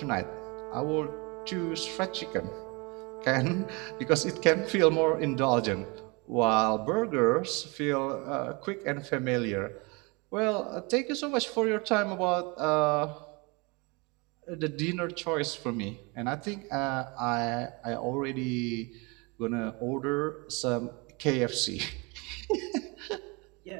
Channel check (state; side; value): quieter; left; 28.4 dB